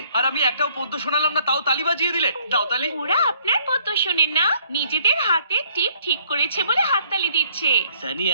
আর আমি একটাও পদ্য শোনালাম না, তাও তালি বাজিয়ে দিলে। দাও তালি। ওরা আপনার পদ্য শোনেন না, নিজেদের হাতে টিপ ঠিক করেছে বলে হাততালি দিচ্ছে। সানি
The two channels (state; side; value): inverted; both; correlation -0.63